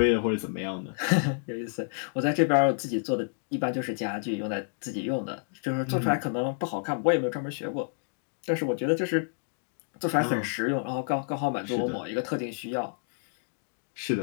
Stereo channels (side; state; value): right; silent; digital silence